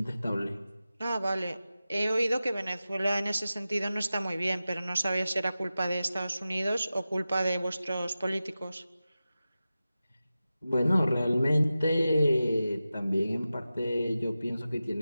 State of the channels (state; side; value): inverted; both; correlation -0.94